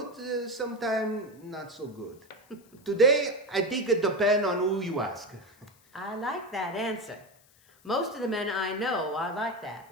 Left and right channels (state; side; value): noise; left; hiss, 30 dB below the sound